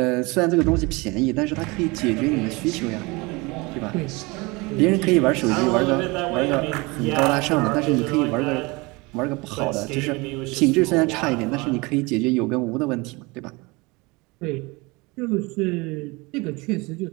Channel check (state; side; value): quieter; left; 25.2 dB